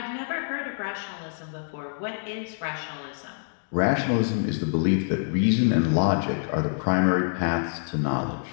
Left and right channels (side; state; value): right; silent; digital silence